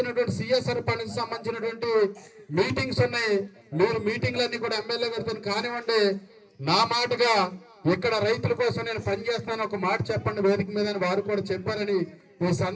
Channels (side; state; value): both; identical; correlation 1.00